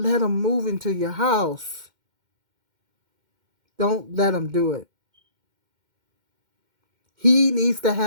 them move into your house. Don't let them do it. He needs to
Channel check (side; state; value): left; late; 2.1 ms